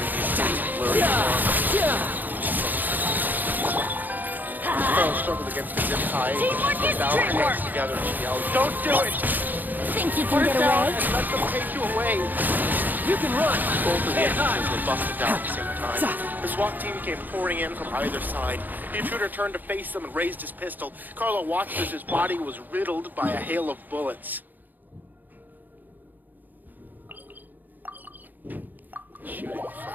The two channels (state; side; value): late; left; 0.086 ms